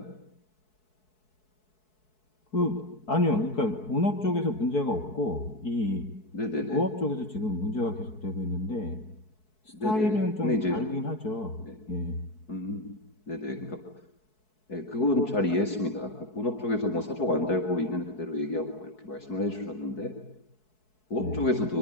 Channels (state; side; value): late; right; 4.7 ms